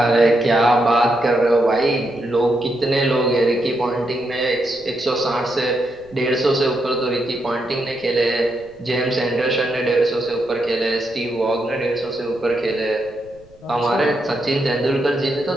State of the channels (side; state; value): right; noise; rumble, 27 dB below the sound